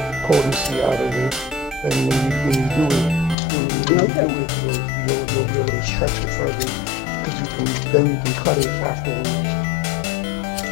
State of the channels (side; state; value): right; drops out; at 3.4 s